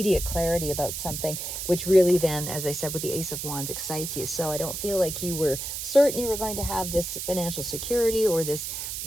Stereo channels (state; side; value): noise; right; hiss, 5 dB below the sound